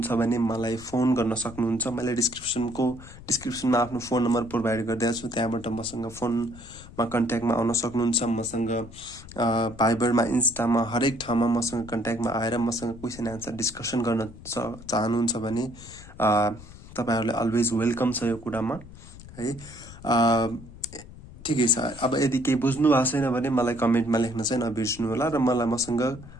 भने मलाई फोन गर्न सक्नुहुन्छ। मैले डिस्क्रिप्सनमा आफ्नो फोन नम्बर प्रोभाइड गरिदिएको छु, त्यहाँबाट मसँग फोनमा कन्ट्याक्टमा आउन सक्नुहुन्छ। मसँग भाइबरमा, इन्स्टामा, हरेक ठाउँमा मसँग कन्ट्याक्टमा आएर मसँग क्वेसन एन्सर डिस्कसन गर्न चाहनुहुन्छ भने तपाईँहरूलाई अलवेज वेलकम छ यो कुरामा है। ठिकै छ, अब यदि केही बुझ्नु भएको छैन भने मलाई कमेन्टमा लेख्न चाहिँ नबिर्सिनु होला र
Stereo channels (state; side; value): noise; left; rumble, 17 dB below the sound